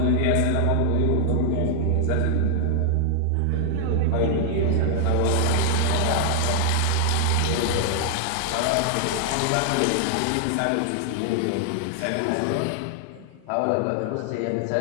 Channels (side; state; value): both; different; correlation -0.01